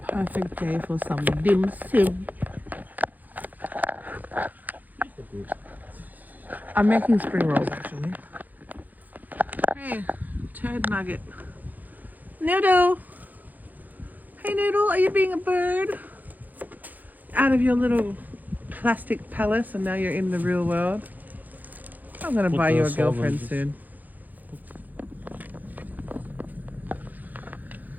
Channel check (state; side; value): late; left; 0.083 ms